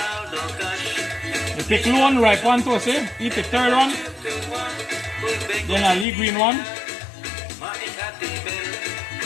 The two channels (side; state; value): right; drops out; at 6.1 s